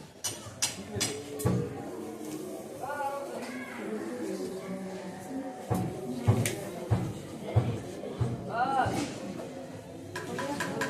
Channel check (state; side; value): identical; both; correlation 1.00